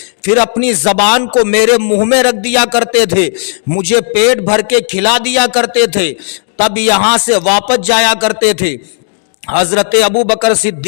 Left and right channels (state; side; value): silent; right; digital silence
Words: پھر اپنی زبان کو میرے منہ میں رکھ دیا کرتے تھے، مجھے پیٹ بھر کے کھلا دیا کرتے تھے، تب یہاں سے واپس جایا کرتے تھے۔ حضرت ابو بکر